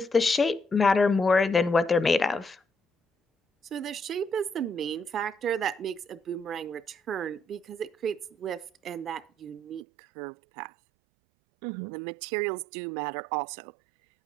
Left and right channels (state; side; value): drops out; left; at 9.9 s